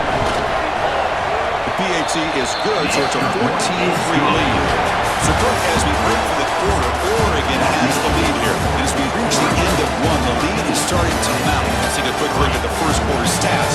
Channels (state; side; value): identical; both; correlation 1.00